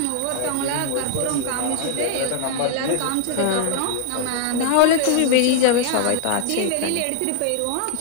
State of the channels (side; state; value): both; different; correlation 0.00